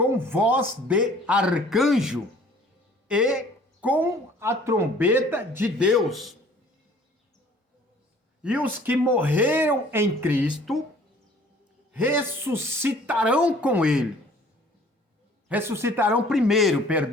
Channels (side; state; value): both; normal; correlation 0.53